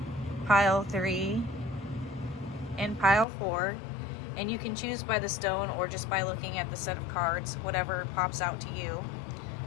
pile 3, and pile 4. And you can choose by the stone or just by looking at the set of cards, whatever pops out to you.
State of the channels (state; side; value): drops out; right; at 3.2 s